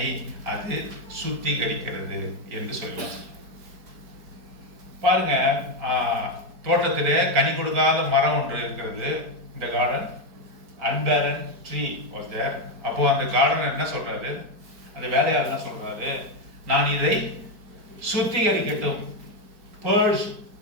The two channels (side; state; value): left; late; 4.6 ms